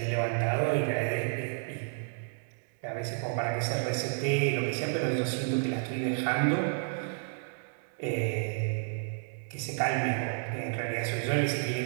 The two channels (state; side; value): silent; left; 57 dB below the other